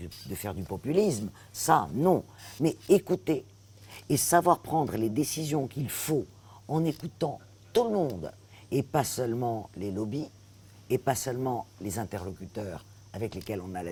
du populisme, ça non, mais écouter et savoir prendre les décisions qu'il faut en écoutant tout le monde et pas seulement les lobbies et pas seulement les interlocuteurs avec lesquels on a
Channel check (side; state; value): both; identical; correlation 1.00